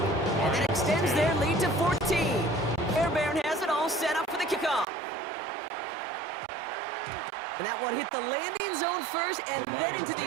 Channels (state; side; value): drops out; left; at 4.9 s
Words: And that extends their lead to 14. Fairbairn has it all set up for the kickoff. And that one hit the landing zone first and then into